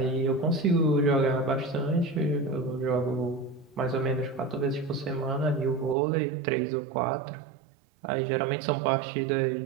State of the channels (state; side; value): drops out; left; at 6.0 s